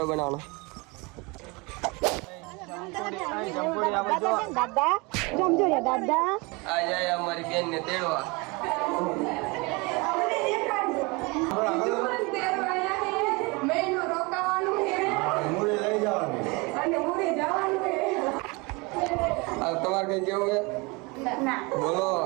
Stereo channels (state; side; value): quieter; left; 27.0 dB